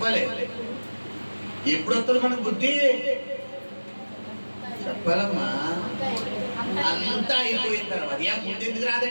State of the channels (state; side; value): inverted; both; correlation -1.00